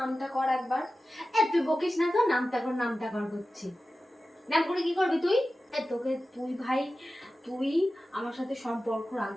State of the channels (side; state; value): both; normal; correlation 0.94